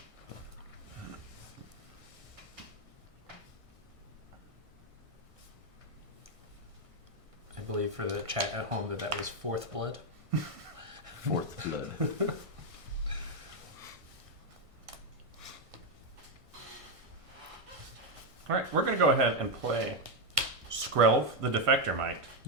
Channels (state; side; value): late; left; 1.5 ms